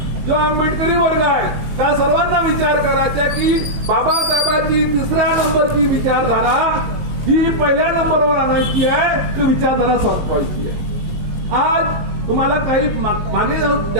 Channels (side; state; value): left; late; 18 ms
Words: जो आंबेडकरी वर्ग आहे, त्या सर्वांना विचार करायचा की बाबासाहेबांची 3ऱ्या नंबरची विचारधारा ही पहिल्या नंबरवर आणायची आहे, ती विचारधारा संपवायची आहे. आज तुम्हाला काही माने